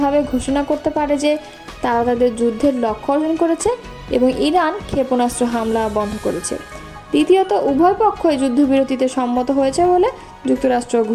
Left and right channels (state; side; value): identical; both; correlation 1.00